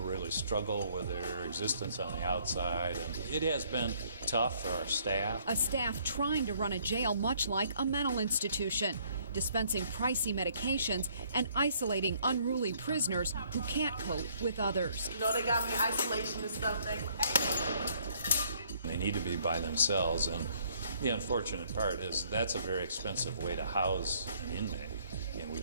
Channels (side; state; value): both; inverted; correlation -0.64